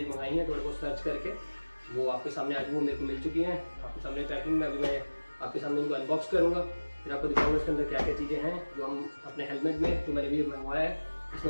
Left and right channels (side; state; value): both; inverted; correlation -1.00